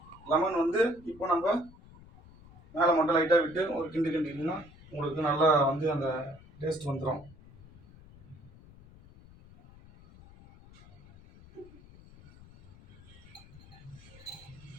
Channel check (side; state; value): left; noise; rumble, 22 dB below the sound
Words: லெமன் வந்து இப்போ நம்ம மேலே மட்டும் லைட்டாக விட்டு ஒரு கிண்டிங்கன்னா உங்களுக்கு நல்லா வந்து அந்த டேஸ்ட் வந்துடும்.